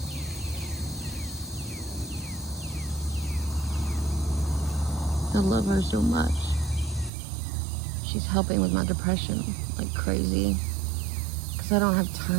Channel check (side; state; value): left; drops out; at 7.1 s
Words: I love her so much. She's helping with my depression like crazy. Because I don't have